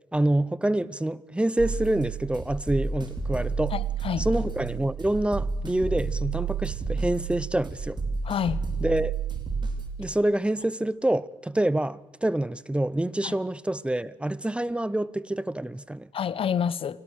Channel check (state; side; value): normal; both; correlation 0.89